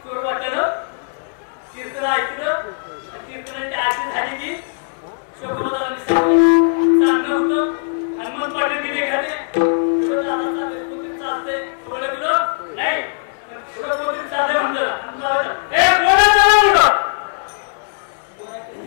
चोर वाटलं कीर्तन ऐकलं कीर्तनाची आरती झाली की शोकोबाला मी सांगणं होतं हनुमान पाटील तिने घाले पुढं दादा चालले कोणतरी चालतंय ओळखलं नाही पण पुढं कोणतरी चाललंय म्हणलं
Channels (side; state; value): right; silent; digital silence